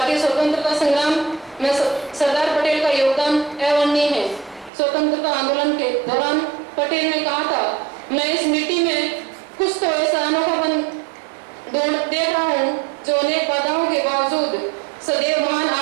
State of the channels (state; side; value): drops out; left; at 4.7 s